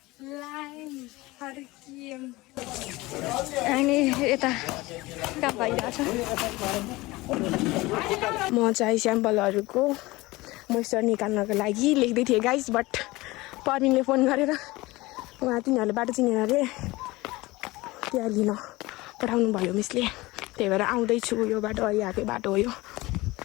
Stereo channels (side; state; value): right; quieter; 20.7 dB